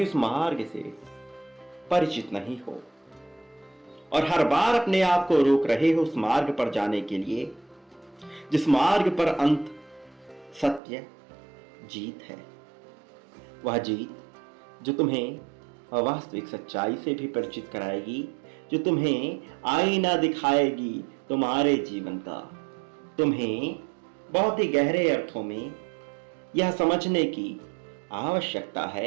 उस मार्ग से परिचित नहीं हो और हर बार अपने आप को रोक रहे हो उस मार्ग पर जाने के लिए जिस मार्ग पर अंत सत्य जीत है। वह जीत जो तुम्हें वास्तविक सच्चाई से भी परिचित कराएगी, जो तुम्हें आईना दिखाएगी तुम्हारे जीवन का। तुम्हें बहुत ही गहरे अर्थों में यह समझने की आवश्यकता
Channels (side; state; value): left; drops out; at 10.8 s